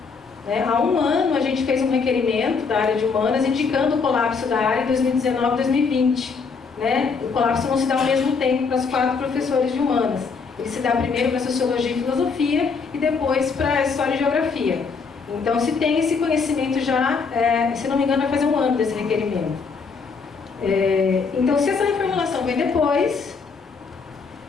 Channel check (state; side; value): quieter; right; 5.1 dB